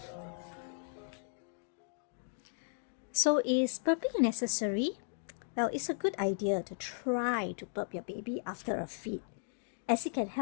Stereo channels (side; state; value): right; silent; digital silence